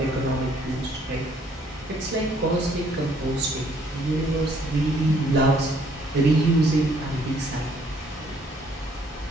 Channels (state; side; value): normal; both; correlation 0.64